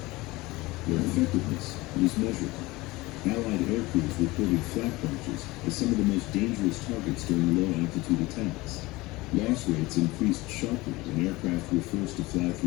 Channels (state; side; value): quieter; right; 21.0 dB